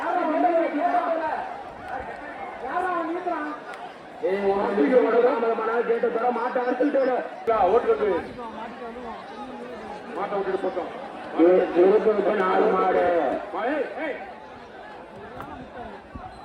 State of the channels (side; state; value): both; identical; correlation 1.00